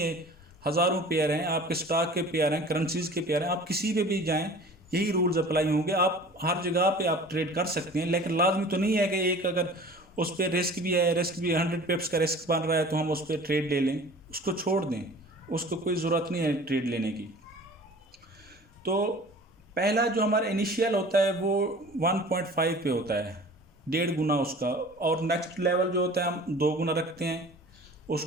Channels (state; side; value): normal; both; correlation 0.43